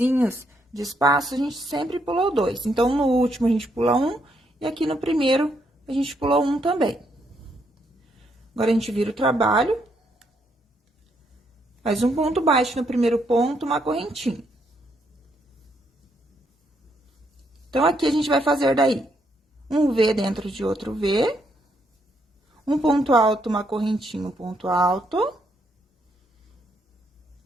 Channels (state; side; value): normal; both; correlation 0.75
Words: de espaço, a gente sempre pulou 2. Então, no último, a gente pula 1, e aqui no primeiro, a gente pulou 1 também. Agora, a gente vira o trabalho. Faz um ponto baixo no primeiro ponto, uma correntinha. Então, aqui a gente vai fazer daí um V dentro de outro V. Um ponto alto, uma correntinha, um ponto alto.